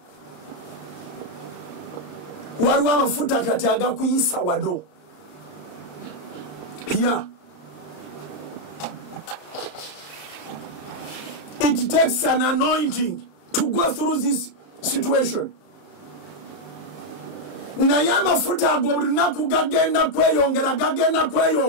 Waliwo amafuta kati agakuyisa wado. Here, it takes an anointing to go through this situation. Naye amafuta ago buli lunaku gagenda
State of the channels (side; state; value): right; late; 34 ms